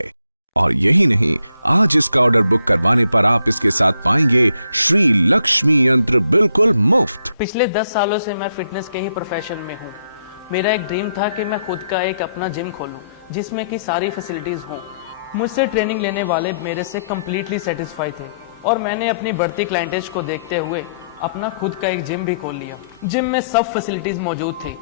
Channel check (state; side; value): inverted; both; correlation -0.74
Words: और यही नहीं, आज इसका ऑर्डर बुक करवाने पर आप इसके साथ पाएंगे श्री लक्ष्मी यंत्र बिल्कुल मुफ्त। पिछले 10 सालों से मैं फिटनेस के ही प्रोफेशन में हूँ। मेरा एक ड्रीम था कि मैं खुद का एक अपना जिम खोलूं जिसमें कि सारी फैसिलिटीज हों। मुझसे ट्रेनिंग लेने वाले मेरे से कम्प्लीटली सेटिस्फाई थे और मैंने अपनी बढ़ती क्लाइंटेज को देखते हुए अपना खुद का एक जिम भी खोल लिया। जिम में सब फैसिलिटीज मौजूद थी